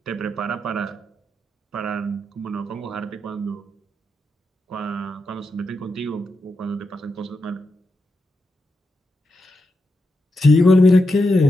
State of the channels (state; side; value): normal; both; correlation 0.86